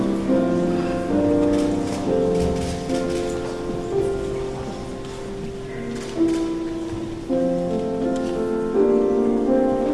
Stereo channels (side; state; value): both; identical; correlation 1.00